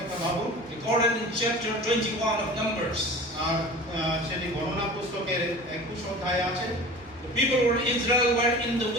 ভাবুন, Recorded in chapter 21 of Numbers. আর সেটি গণনা পুস্তকের 21 অধ্যায়ে আছে। The people of Israel were in the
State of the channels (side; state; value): both; normal; correlation 0.38